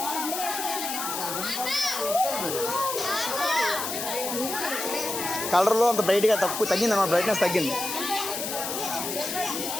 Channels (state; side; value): noise; left; hiss, 4 dB below the sound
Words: కలర్లో అంత బ్రైట్గా తగ్గింది అన్నమాట, బ్రైట్నెస్ తగ్గింది.